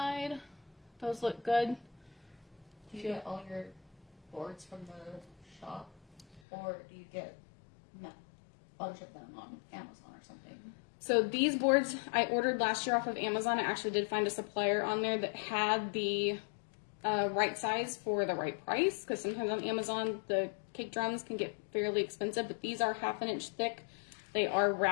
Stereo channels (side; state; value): right; drops out; at 6.4 s